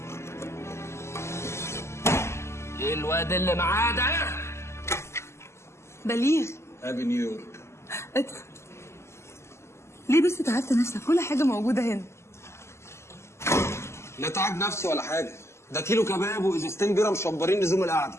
ايه الواد اللي معاه ده؟ بليغ، هابي نيويورك. ادخل. ليه بس تعبت نفسك؟ كل حاجه موجوده هنا. لا تعب نفسي ولا حاجه، ده كيلو كباب وازازتين بيره مشبرين لزوم القعده.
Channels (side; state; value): right; late; 0.13 ms